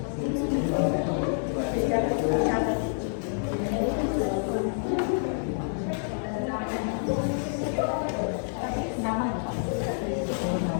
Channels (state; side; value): silent; right; digital silence